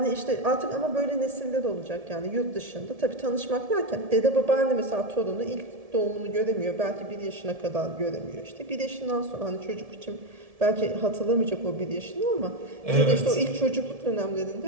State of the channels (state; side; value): late; left; 1.7 ms